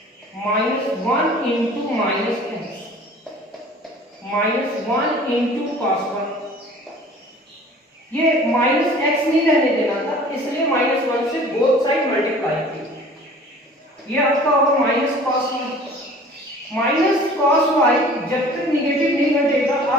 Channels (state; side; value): normal; both; correlation 0.47